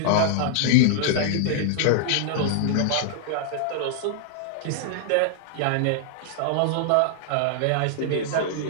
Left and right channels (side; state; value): both; different; correlation -0.01